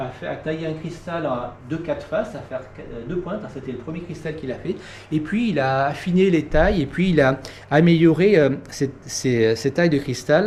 tailler un cristal de 4 faces, à faire 2 pointes, c'était le premier cristal qu'il a fait. Et puis il a affiné les tailles et puis il a amélioré ces tailles de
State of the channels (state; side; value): identical; both; correlation 1.00